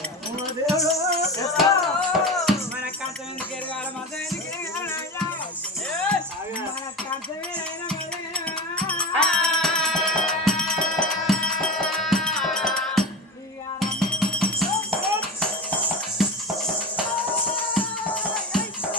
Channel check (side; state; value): both; normal; correlation 0.26